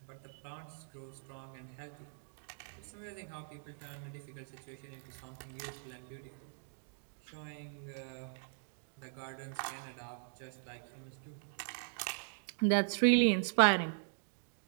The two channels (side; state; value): left; silent; digital silence